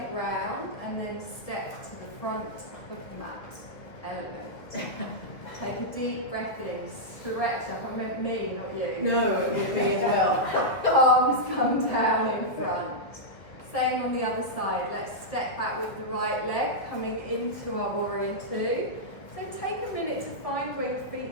round, and then step to the front of the mat. Element. Take a deep breath in, stretch up. I meant me, not you. No, me as well. Palms come down in front. Same on the other side. Let's step back with the right leg, coming into our warrior two. So take a minute to find where your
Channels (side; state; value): right; late; 1.4 ms